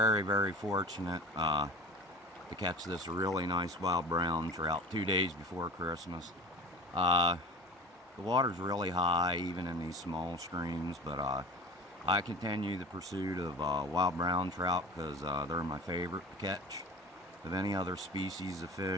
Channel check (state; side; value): normal; both; correlation 0.36